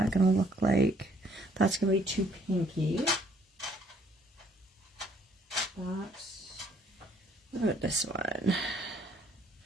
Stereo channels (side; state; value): both; normal; correlation 0.63